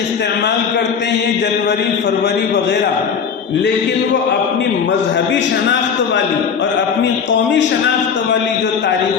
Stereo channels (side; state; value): right; quieter; 6.7 dB